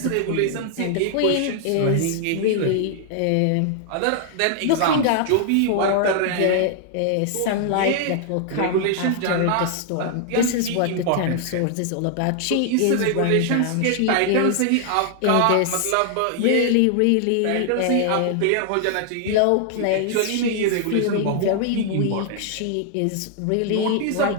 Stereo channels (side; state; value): both; different; correlation 0.00